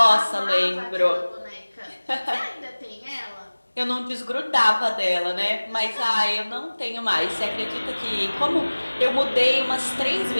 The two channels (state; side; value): inverted; both; correlation -1.00